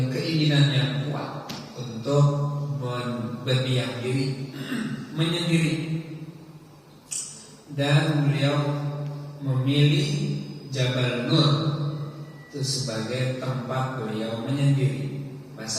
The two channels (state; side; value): identical; both; correlation 1.00